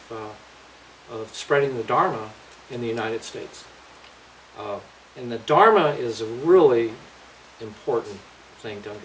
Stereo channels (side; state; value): both; identical; correlation 1.00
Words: spreading the Dharma in the United States. And the Dharma is a really important thing to